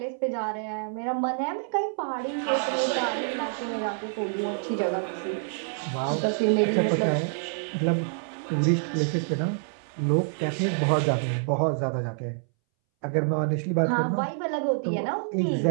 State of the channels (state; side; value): silent; left; 60 dB below the other